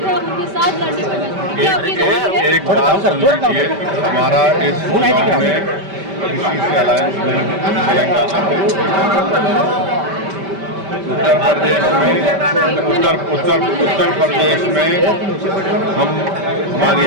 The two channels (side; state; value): left; late; 5.1 ms